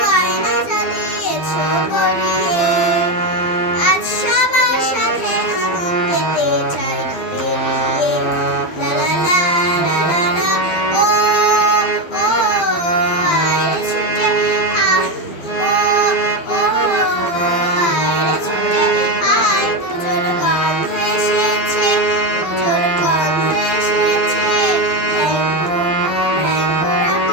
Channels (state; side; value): late; right; 12 ms